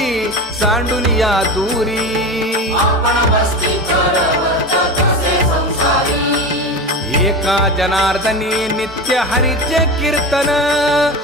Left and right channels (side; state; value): both; normal; correlation 0.25